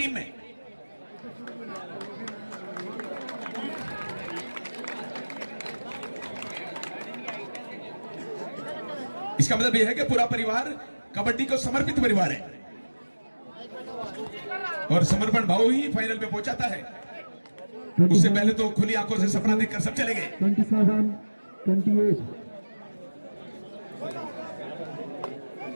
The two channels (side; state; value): both; inverted; correlation -1.00